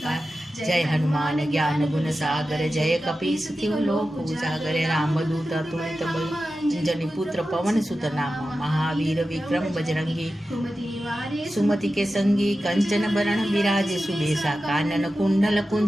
जय हनुमान ज्ञान गुण सागर जय कपीस तिहु लोक उजागर रामदूत तुलित बल जनि पुत्र पवन सुत नामा महावीर विक्रम बजरंगी कुमति निवारे सुमति के संगी कंचन बरण विराजे सुबेसा कानन कुंडल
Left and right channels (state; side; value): normal; both; correlation 0.93